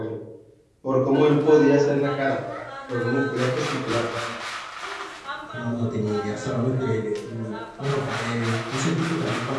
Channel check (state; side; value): identical; both; correlation 1.00